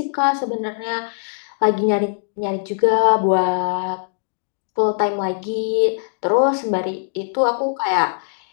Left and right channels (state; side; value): silent; right; digital silence